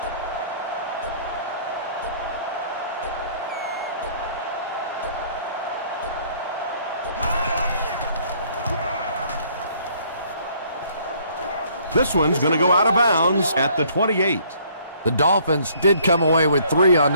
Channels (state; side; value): inverted; both; correlation -0.61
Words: This one's going to go out of bounds at the 28. The Dolphins did come away with 3 on